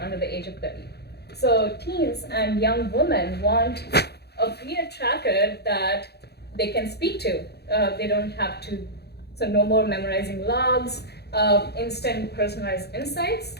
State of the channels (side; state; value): right; late; 0.48 ms